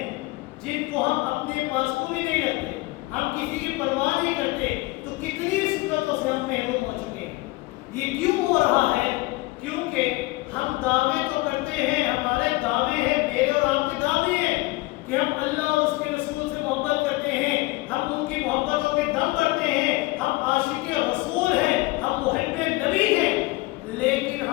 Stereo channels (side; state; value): right; quieter; 21.7 dB